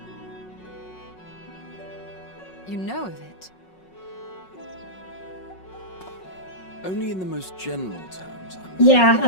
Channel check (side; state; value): right; late; 5.4 ms